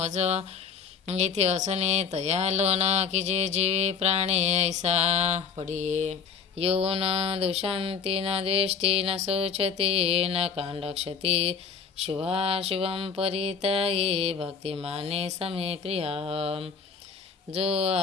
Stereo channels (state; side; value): quieter; right; 6.1 dB